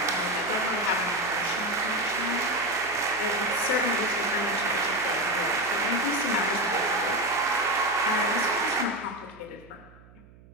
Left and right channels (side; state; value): right; noise; hum, 24 dB below the sound